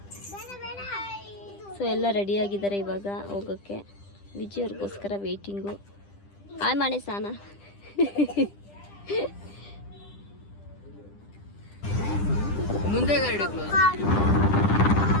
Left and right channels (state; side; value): late; right; 10 ms